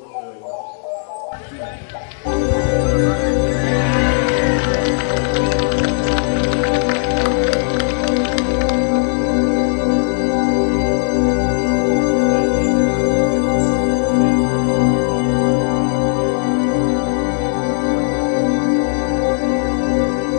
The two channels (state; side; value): silent; right; digital silence